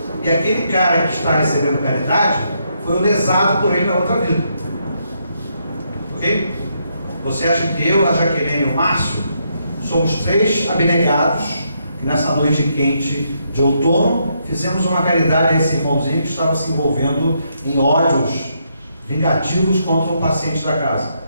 E aquele cara que está recebendo caridade foi o lesado por ele na outra vida. Ok? Você acha que eu, a Jaqueline e o Márcio somos 3 abnegados que nessa noite quente de outono fizemos uma caridade a esse irmãozinho que estava se envolvendo em ódios vingativos contra um paciente da casa?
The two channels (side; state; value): both; inverted; correlation -0.77